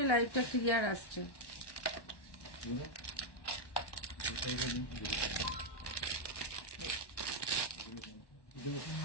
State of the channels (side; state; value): right; late; 1.1 ms